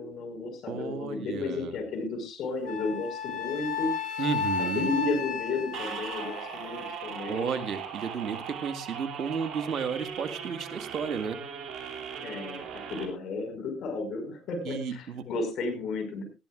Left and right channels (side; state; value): both; normal; correlation 0.45